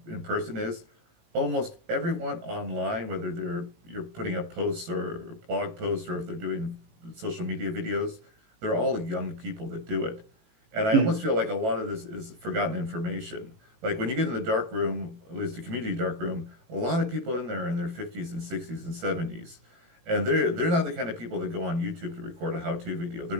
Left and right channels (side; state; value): left; late; 18 ms